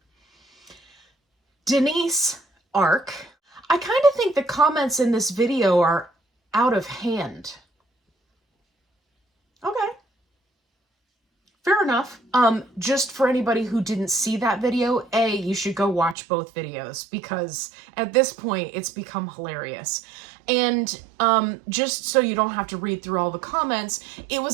Denise Arc. I kind of think the comments in this video are out of hand. Okay. Fair enough. Just for anybody who didn't see that video, you should go watch both videos because at this point it's become hilarious. And just so you don't have to read through all the comments, it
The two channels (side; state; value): left; drops out; at 16.2 s